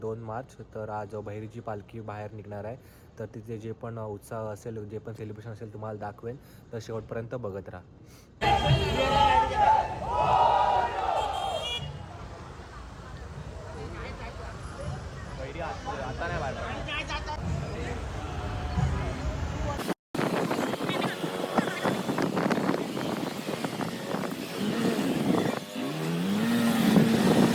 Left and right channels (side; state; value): both; identical; correlation 1.00